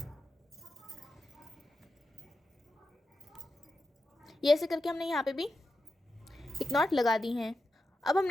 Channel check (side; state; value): both; normal; correlation 0.89